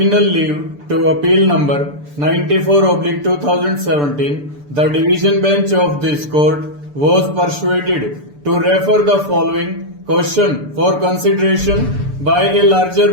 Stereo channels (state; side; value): late; left; 6.9 ms